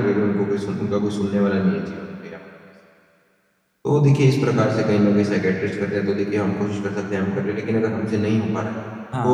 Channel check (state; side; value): identical; both; correlation 1.00